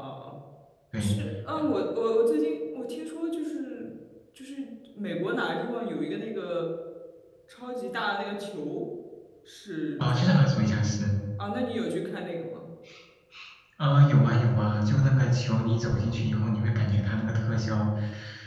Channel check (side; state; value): both; identical; correlation 1.00